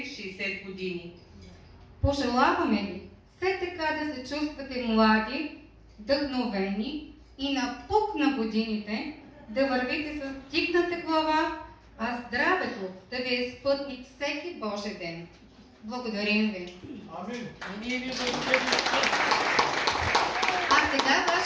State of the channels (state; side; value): identical; both; correlation 1.00